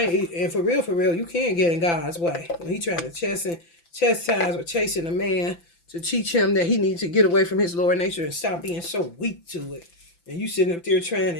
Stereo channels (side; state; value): right; late; 5.9 ms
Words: ain't, and for real, you can't get in God's way. When he trying to chastise or chasing a man to teach him that he needs to get away from his lower nature and stop being so weak to it. And you sitting up there trying